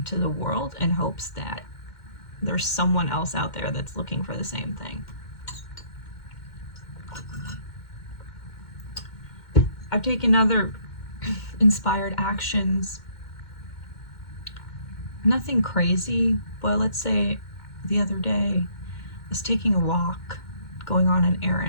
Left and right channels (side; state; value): right; late; 2.1 ms